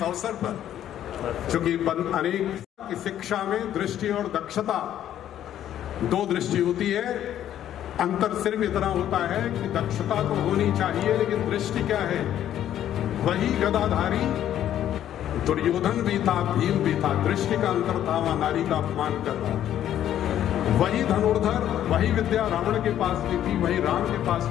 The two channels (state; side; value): quieter; right; 11.2 dB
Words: अवसर पर, चूंकि अनेक की शिक्षा में दृष्टि और दक्षता, दो दृष्टि होती है, अंतर सिर्फ इतना होता है कि दक्षता तो होनी चाहिए, लेकिन दृष्टि क्या है? वही गदाधारी दुर्योधन भी था, भीम भी था, दृष्टि का अंतर था, वहां नारी का अपमान कर रहा। वही धनुर्धर, वही विद्या रावण के पास भी थी, वही राम के पास